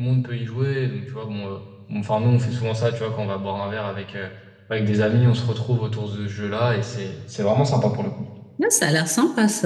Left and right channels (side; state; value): both; identical; correlation 1.00